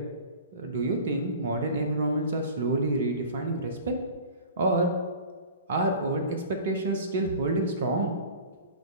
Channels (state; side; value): inverted; both; correlation -0.40